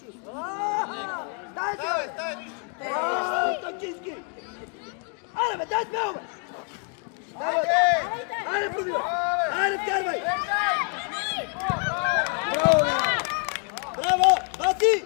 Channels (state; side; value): quieter; right; 38.3 dB